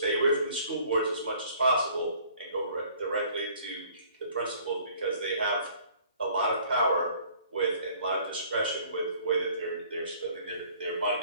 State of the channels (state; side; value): inverted; both; correlation -0.56